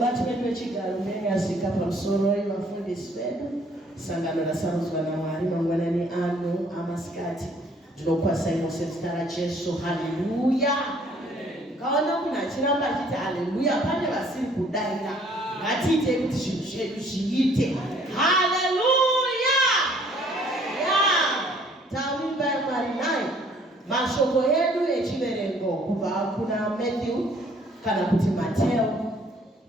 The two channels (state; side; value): normal; both; correlation 0.60